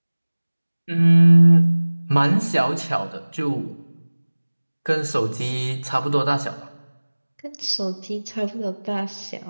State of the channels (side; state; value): both; inverted; correlation -1.00